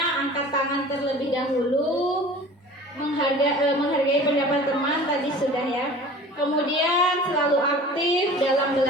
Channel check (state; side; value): normal; both; correlation 0.42